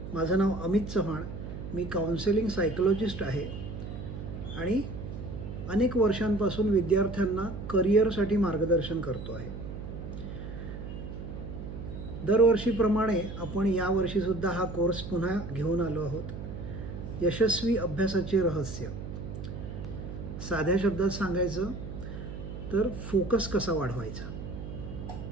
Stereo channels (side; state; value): right; noise; hum, 8 dB below the sound